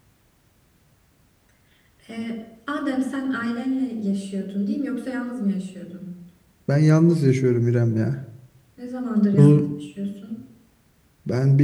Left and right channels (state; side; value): identical; both; correlation 1.00